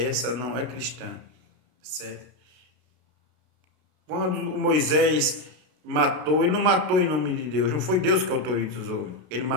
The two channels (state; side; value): late; left; 32 ms